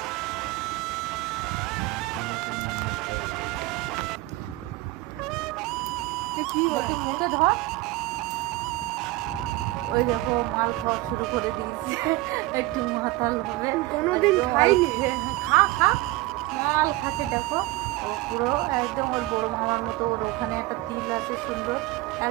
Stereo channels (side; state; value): left; quieter; 19.3 dB